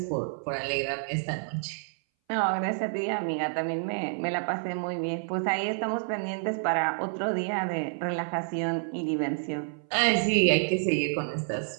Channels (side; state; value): left; silent; 59 dB below the other